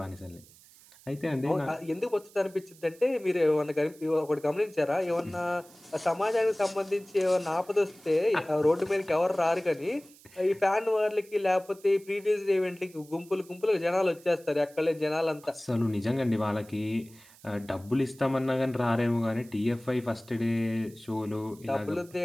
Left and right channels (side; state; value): right; noise; hiss, 24 dB below the sound